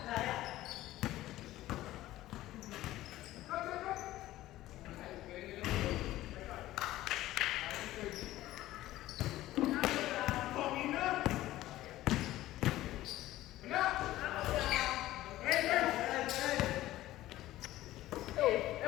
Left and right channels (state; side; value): quieter; right; 15.5 dB